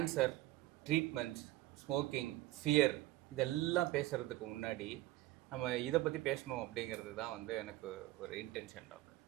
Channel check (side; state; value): left; quieter; 17.0 dB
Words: treatments, smoking, fear இதெல்லாம் பேசுகிறதுக்கு முன்னாடி நம்ம இதை பற்றி பேசணும் அப்படிங்கிறது தான் வந்து எனக்கு ஒரு இன்டென்ஷன் டாக்டர்.